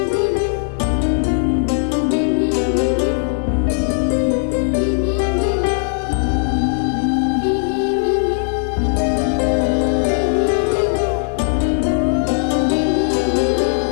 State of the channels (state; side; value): silent; right; 64 dB below the other